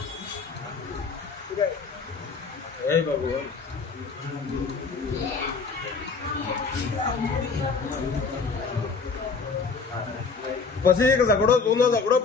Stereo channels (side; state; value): right; quieter; 4.8 dB